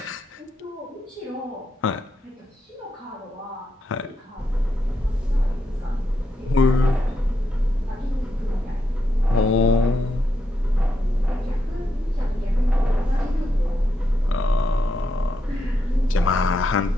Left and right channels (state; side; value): normal; both; correlation 0.82